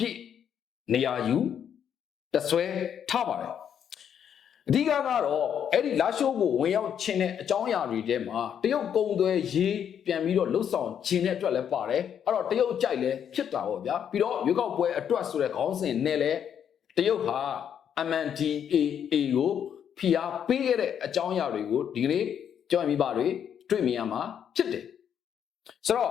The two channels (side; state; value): right; quieter; 8.6 dB